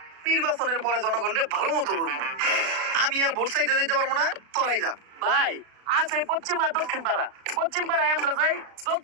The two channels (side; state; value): left; late; 36 ms